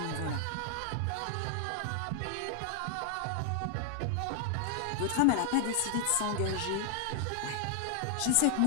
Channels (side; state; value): both; different; correlation 0.00